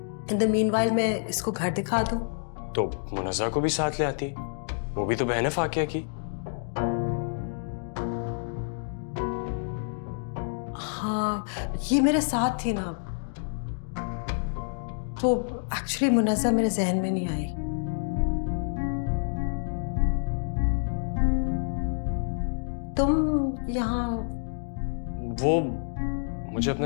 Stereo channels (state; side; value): silent; right; digital silence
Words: इन द मीनवाइल मैं इसको घर दिखा दूं। तो मुनज़्ज़ा को भी साथ ले आती, वो भी तो बहन है फाकिया की। हाँ ये मेरे साथ थी ना, तो एक्चुअली मुनज़्ज़ा मेरे जहन में नहीं आई। तुम यहाँ? वो मुझे